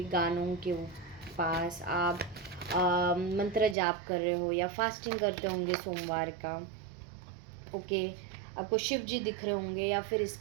गानों के पास। आप मंत्र जाप कर रहे हो या फास्टिंग करते होंगे सोमवार का। ओके, आपको शिव जी दिख रहे होंगे या फिर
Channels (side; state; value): left; drops out; at 3.8 s